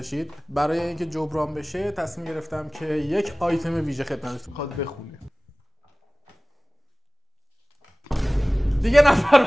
برای اینکه جبران بشه تصمیم گرفتم که یک آیتم ویژه خدمتتون میخواد بخونه. دیگه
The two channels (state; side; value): normal; both; correlation 0.98